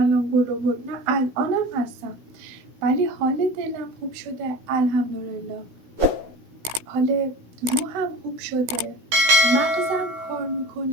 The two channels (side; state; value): left; late; 16 ms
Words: برو، نه الانم هستم، ولی حال دلم خوب شده الحمدلله، حال روحم خوب شده، مغزم کار